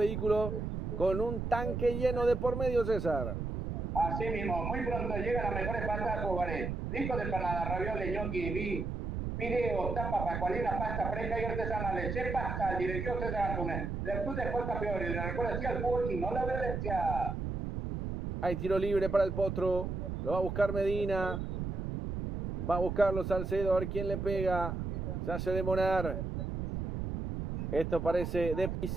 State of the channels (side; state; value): right; noise; rumble, 3 dB below the sound